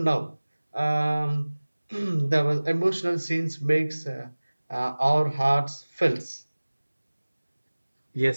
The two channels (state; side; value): inverted; both; correlation -1.00